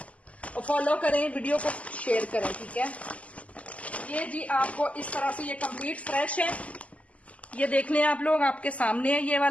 और फॉलो करें, वीडियो को शेयर करें, ठीक है। ये जी आपको इस तरह से ये कंप्लीट फ्रेश है, ये देख लें आप लोग, आपके सामने है। ये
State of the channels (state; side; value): late; right; 0.068 ms